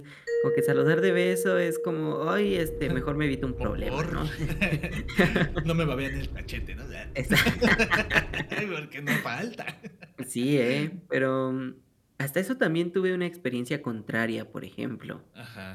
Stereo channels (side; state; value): both; identical; correlation 1.00